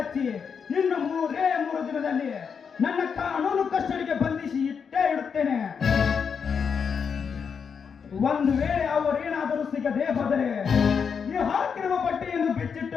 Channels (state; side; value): quieter; right; 6.4 dB